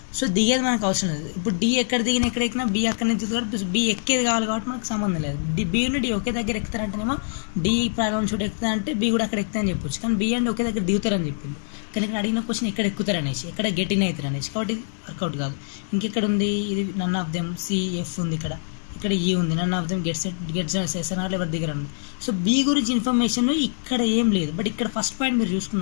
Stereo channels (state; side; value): silent; right; digital silence